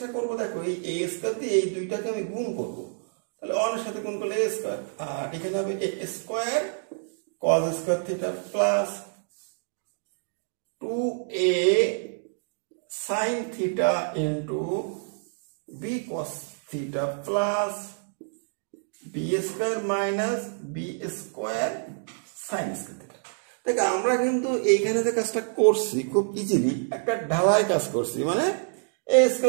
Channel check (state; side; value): silent; left; digital silence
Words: করব দেখো, এই a স্কয়ার দিয়ে এই দুইটাকে আমি গুণ করব, তাহলে 1 এর সাথে গুণ করলে a স্কয়ার, আর এখানে হবে a square cos square theta plus 2a sin theta into b cos theta plus b square minus b square sin square theta. দেখ আমরা কিন্তু এইখানে যে কাজটা করছি খুব ইজিলি একটা ঢালাই কাজ করছি, মানে a